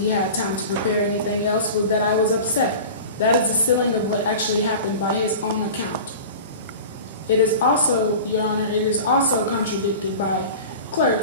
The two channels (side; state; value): both; inverted; correlation -0.36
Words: had time to prepare anything else was that I was upset. That is the ceiling of what actually happened by his own account. It is also, Your Honor, it is also contradicted by